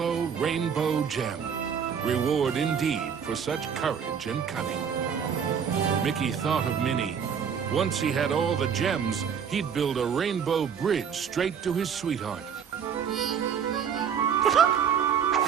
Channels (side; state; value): left; quieter; 7.3 dB